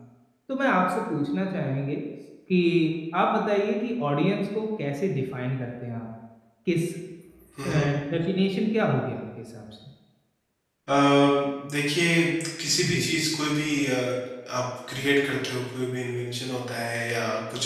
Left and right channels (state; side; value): identical; both; correlation 1.00